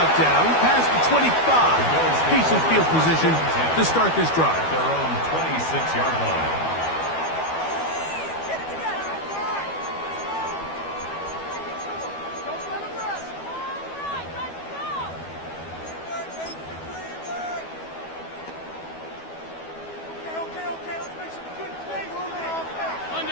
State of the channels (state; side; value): late; right; 12 ms